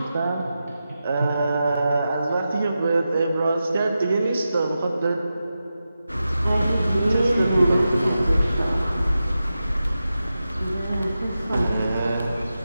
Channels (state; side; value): inverted; both; correlation -0.91